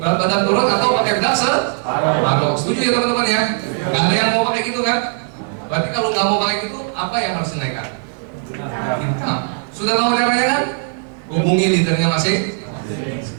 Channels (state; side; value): silent; left; 67 dB below the other